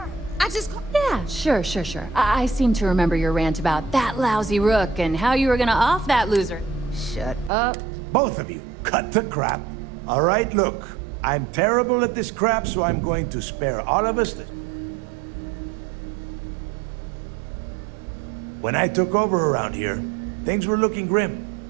I just... Yeah, sure. I seem to remember your rant about that lousy rook and how you were gonna off that loser. Shut up. Both of you, cut the crap. All right, look. I'm terrible at this crap, so I'm going to spare all of us this. When I took over around here, things were looking grim.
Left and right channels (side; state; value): left; drops out; at 7.5 s